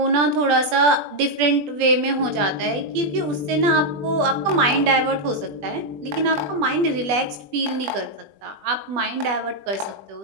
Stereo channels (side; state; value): left; late; 20 ms